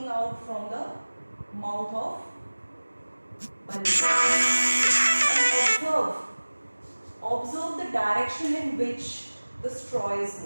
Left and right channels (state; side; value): inverted; both; correlation -1.00